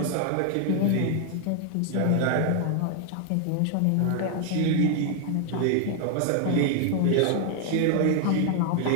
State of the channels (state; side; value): different; both; correlation 0.00